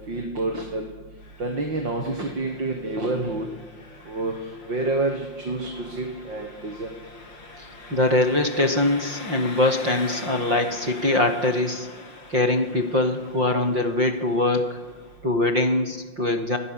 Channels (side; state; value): left; late; 5.7 ms